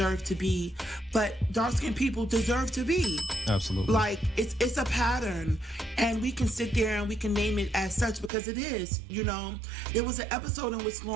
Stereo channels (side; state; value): left; drops out; at 8.3 s